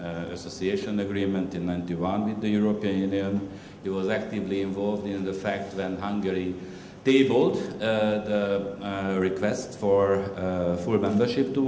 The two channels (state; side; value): identical; both; correlation 1.00